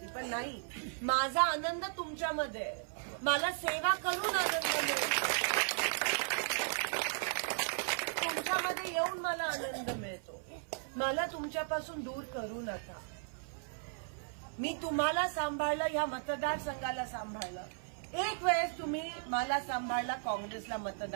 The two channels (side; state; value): left; silent; 54 dB below the other